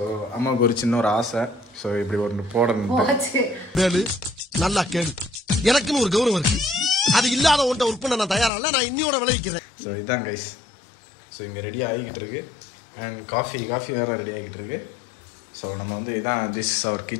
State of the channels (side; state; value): right; drops out; at 8.5 s